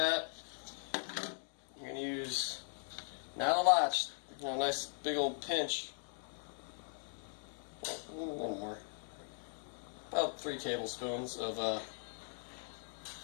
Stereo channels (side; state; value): right; silent; digital silence